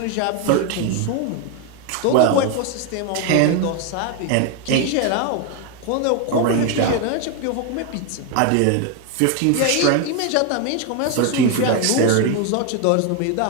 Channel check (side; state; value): both; different; correlation 0.01